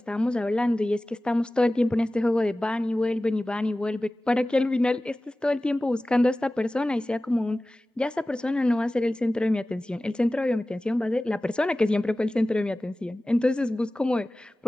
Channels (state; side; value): normal; both; correlation 0.97